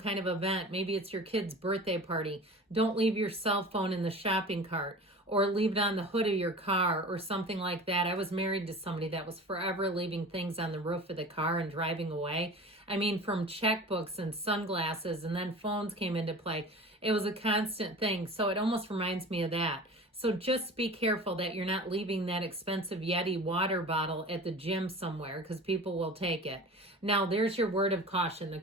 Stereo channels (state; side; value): normal; both; correlation 0.37